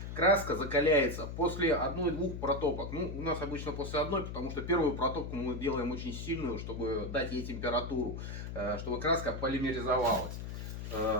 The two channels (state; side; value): noise; left; hum, 7 dB below the sound